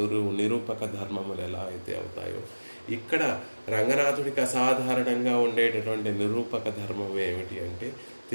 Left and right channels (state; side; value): inverted; both; correlation -1.00